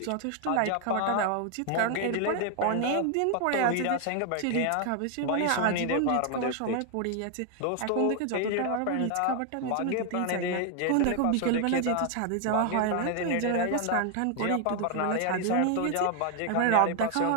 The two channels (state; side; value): different; both; correlation 0.00